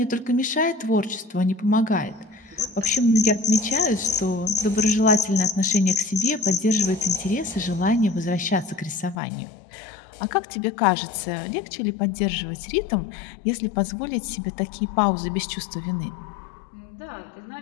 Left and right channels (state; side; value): drops out; right; at 9.2 s